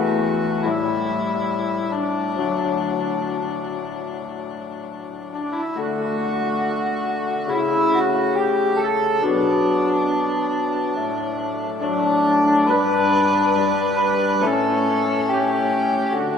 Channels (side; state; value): both; normal; correlation 0.66